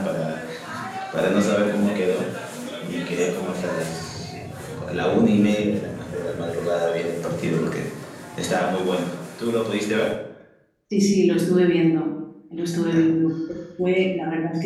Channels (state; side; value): identical; both; correlation 1.00